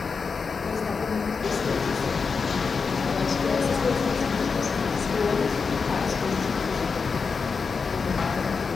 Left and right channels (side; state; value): right; quieter; 5.2 dB